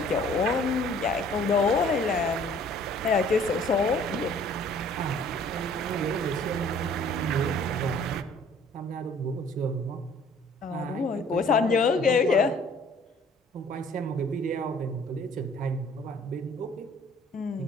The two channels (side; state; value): both; normal; correlation 0.55